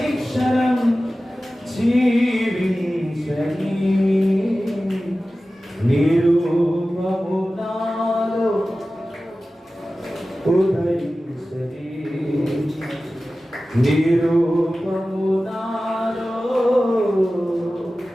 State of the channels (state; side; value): normal; both; correlation 0.95